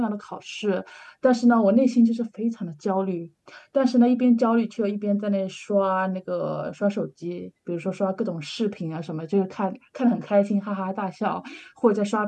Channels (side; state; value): both; identical; correlation 1.00